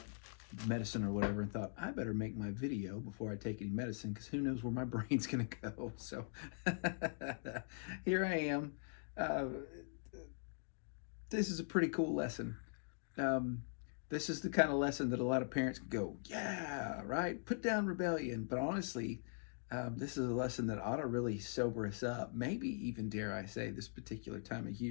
medicine or whatever, and thought I better make my video before I take any medicine because who knows where my brain's gonna go. So here I am. Uh, this is a pretty cool lesson. Um, this is the kind of lesson that a lot of parents go, yeah, right, put down rebellion. But honestly, this is a lesson that ought to really sober us up. Maybe even, dare I say, this particular time of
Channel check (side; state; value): right; silent; digital silence